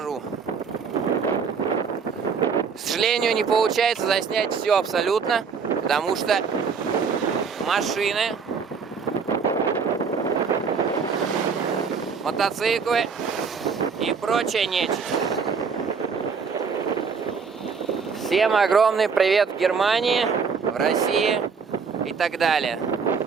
К сожалению, не получается заснять все абсолютно, потому что машины, мотоциклы и прочая нечисть. Всем огромный привет в Германии, в России и так далее.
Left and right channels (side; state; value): left; quieter; 5.7 dB